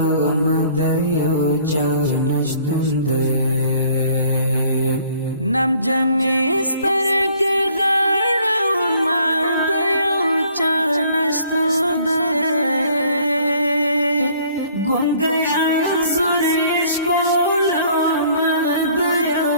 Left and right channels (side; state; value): both; inverted; correlation -0.58